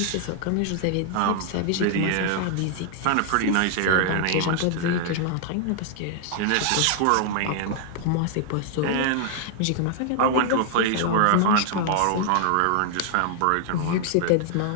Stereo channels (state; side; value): different; both; correlation 0.00